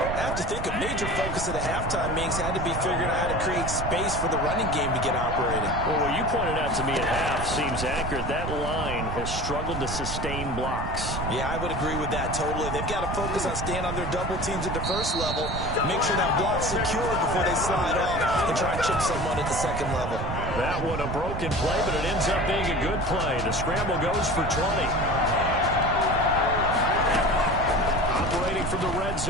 I have to think a major focus of the halftime meetings had to be figuring out how to create space for the running game to get operating. Well, what you pointed out to me at half seems accurate. That line has struggled to sustain blocks. Yeah, I would agree with that totally. They've got to focus on staying on their double teams at the first level, make sure that block's secure before they slide off and try and chip someone at the second level. That one a broken play, but it ends up being a good play. The scramble goes for 20. Operating from the red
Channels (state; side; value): noise; right; rumble, 5 dB below the sound